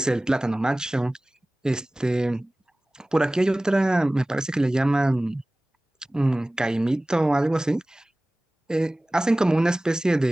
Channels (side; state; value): both; normal; correlation 0.98